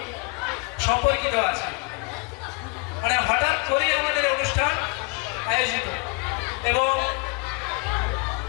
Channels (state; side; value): quieter; right; 29.5 dB